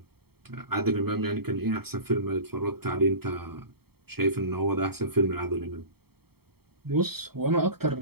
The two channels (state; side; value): late; left; 0.95 ms